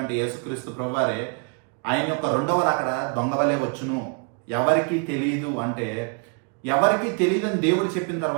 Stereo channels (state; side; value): quieter; left; 35.1 dB